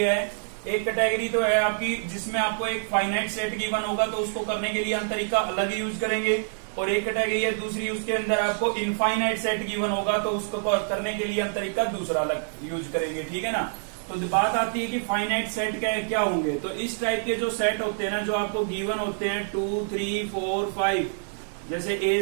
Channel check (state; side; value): silent; left; digital silence